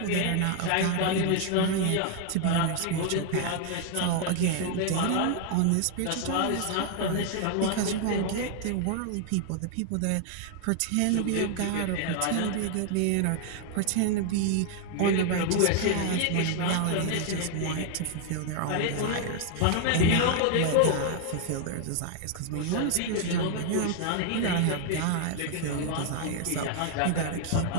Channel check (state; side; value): different; both; correlation 0.00